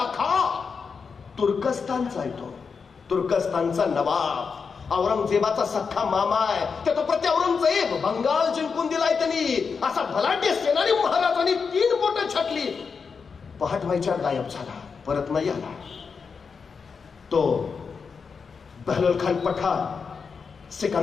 खान, तुर्कस्तानचा आहे तो, तुर्कस्तानचा नवाब. औरंगजेबाचा सख्खा मामा आहे. त्या तो प्रति औरंगजेब बंगाल जिंकून दिलाय त्यांनी. असा भलाढ्य सेनानी महाराजांनी 3 बोटं छाटली. पहाट व्हायच्या गायब झाला, परत नाही आला. तो बहलोल खान पठाण,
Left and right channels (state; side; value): quieter; right; 5.5 dB